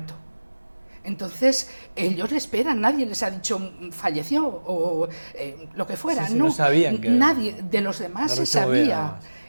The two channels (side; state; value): both; inverted; correlation -1.00